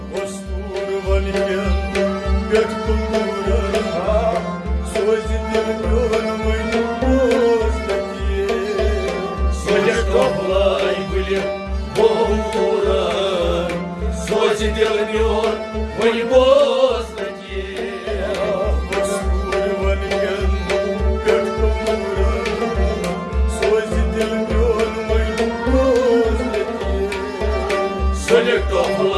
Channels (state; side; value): identical; both; correlation 1.00